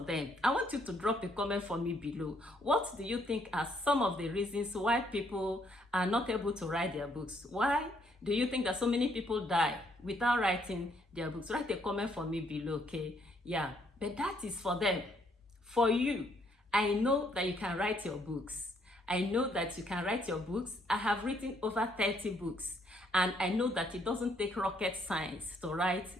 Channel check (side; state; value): both; normal; correlation 0.69